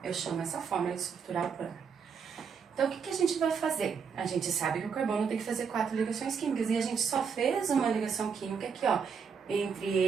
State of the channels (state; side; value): quieter; left; 6.3 dB